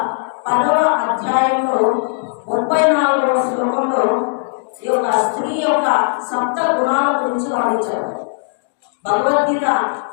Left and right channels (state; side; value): silent; right; digital silence